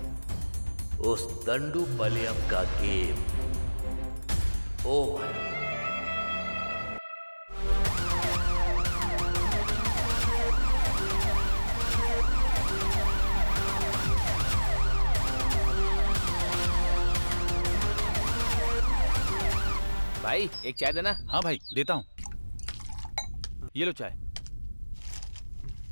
उस दंडू पलेयम का गेम ओवर। भाई एक चाय देना। हाँ भाई देता हूँ, ये लो चाय।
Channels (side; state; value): both; inverted; correlation -1.00